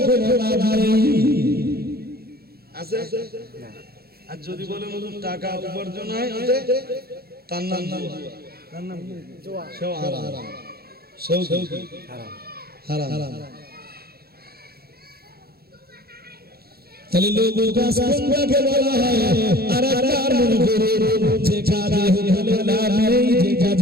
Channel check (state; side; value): late; left; 0.45 ms